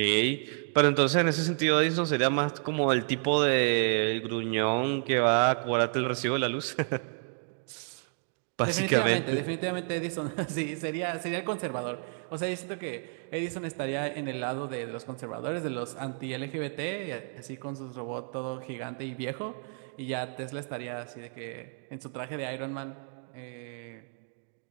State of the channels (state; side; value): silent; left; 57 dB below the other